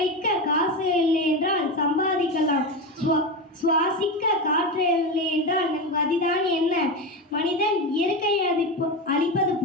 காசு இல்லை என்றால் சம்பாதிக்கலாம், சுவாசிக்க காற்று இல்லை என்றால் நம் கதிதான் என்ன? மனிதன் இயற்கையை அழிப்பது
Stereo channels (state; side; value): normal; both; correlation 0.18